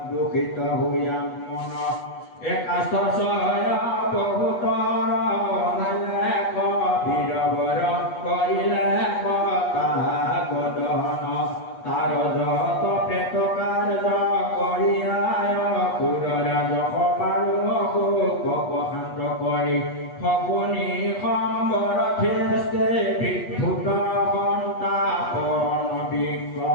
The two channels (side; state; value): right; late; 8.3 ms